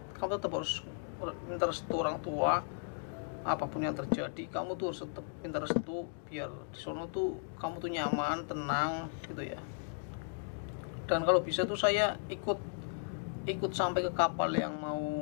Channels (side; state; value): right; silent; digital silence